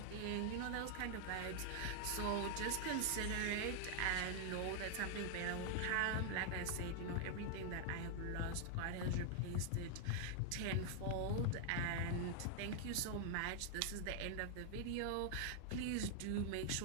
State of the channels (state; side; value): different; both; correlation 0.00